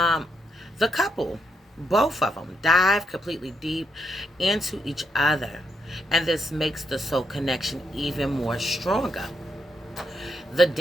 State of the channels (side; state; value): both; normal; correlation 0.79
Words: the couple, both of them, dive completely deep into each other, and this makes the soul connection even more stronger. The